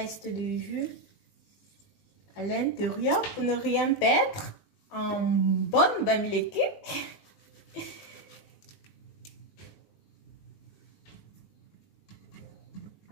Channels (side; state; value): right; late; 20 ms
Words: du jus à l'intérieur pour ne rien perdre en bonne bamileke.